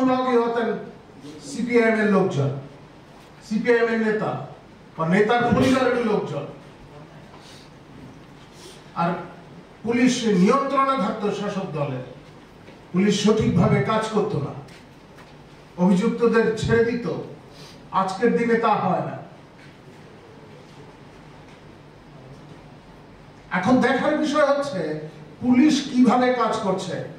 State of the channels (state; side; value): identical; both; correlation 1.00